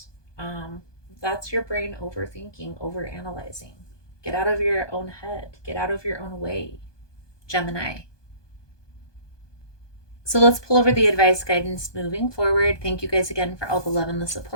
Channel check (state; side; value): late; right; 1.2 ms